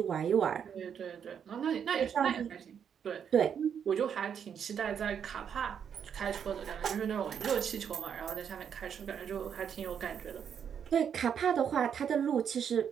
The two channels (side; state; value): left; quieter; 7.9 dB